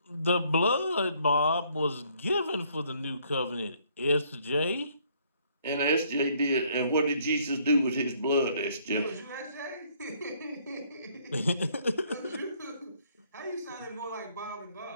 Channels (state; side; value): inverted; both; correlation -0.65